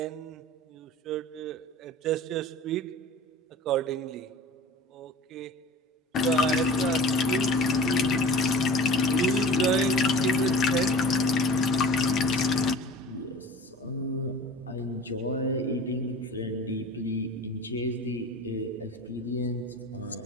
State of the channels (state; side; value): normal; both; correlation 0.40